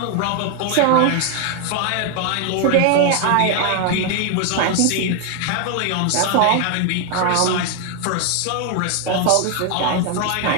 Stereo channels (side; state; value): both; different; correlation 0.00